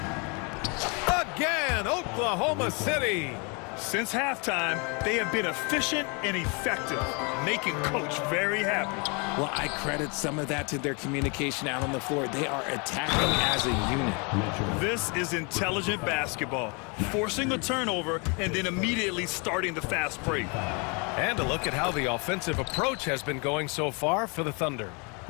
Again, Oklahoma City. Since halftime, they have been efficient and effective, making Coach very happy. Well, I credit some of that to their communication out on the floor. They are attacking as a unit. This is intelligent basketball, forcing a turnover and then immediately starting the fast break. And a look at how the offensive approach has been going so far for the Thunder.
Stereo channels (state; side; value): quieter; right; 32.5 dB